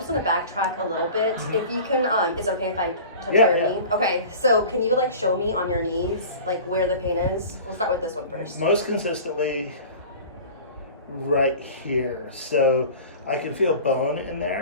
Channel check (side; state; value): both; inverted; correlation -0.40